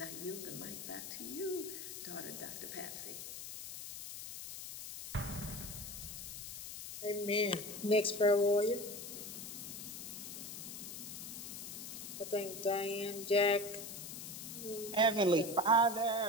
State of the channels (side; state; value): left; noise; hiss, 9 dB below the sound